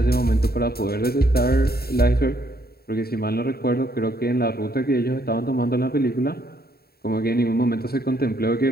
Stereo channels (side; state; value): right; late; 0.45 ms